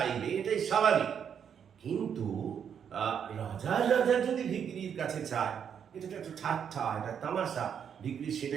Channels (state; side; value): quieter; left; 7.9 dB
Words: এটাই স্বাভাবিক। কিন্তু রাজার যদি ভিখিরির কাছে চায়, এটা তো একটা ঠাট্টা, একটা তামাশা। ভিখিরি